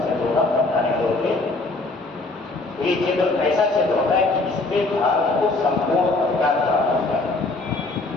क्षेत्र होगा बताने तौर पर। ये क्षेत्र ऐसा क्षेत्र होता है कि इसमें भारत को संपूर्ण अधिकार प्राप्त होता है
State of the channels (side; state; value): right; quieter; 3.2 dB